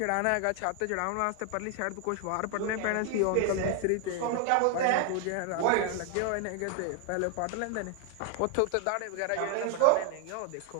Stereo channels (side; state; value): both; different; correlation 0.00